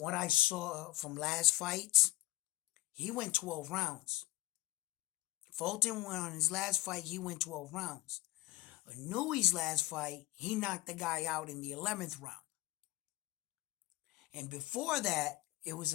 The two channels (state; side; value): quieter; right; 17.4 dB